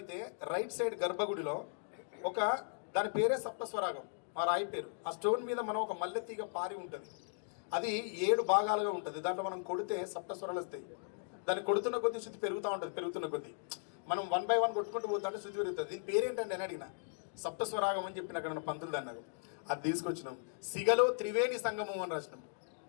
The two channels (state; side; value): silent; right; digital silence